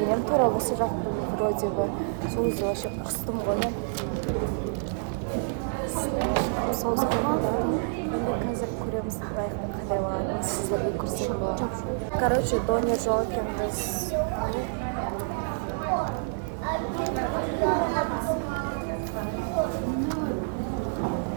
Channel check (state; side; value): silent; left; digital silence